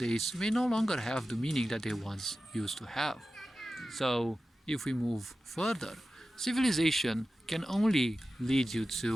may no longer have the meaning that they once used to have. So, if we move further, civilization can only lead you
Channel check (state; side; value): normal; both; correlation 0.94